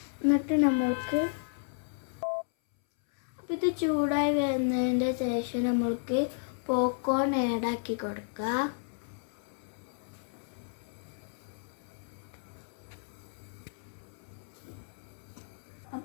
എന്നിട്ട് നമ്മൾക്ക് അപ്പം ഇത് ചൂടായി വരുന്നതിൻ്റെ ശേഷം നമ്മൾക്ക് പോപ്കോൺ ആഡാക്കി കൊടുക്കാം.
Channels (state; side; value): silent; right; 56 dB below the other